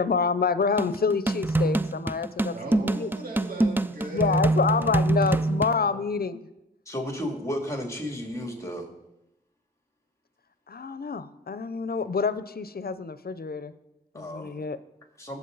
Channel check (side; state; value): both; normal; correlation 0.41